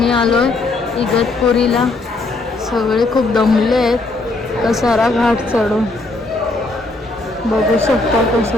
आलोय इगतपुरीला. सगळे खूप दमले आहेत कसारा घाट चढून. बघू शकता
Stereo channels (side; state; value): right; quieter; 3.2 dB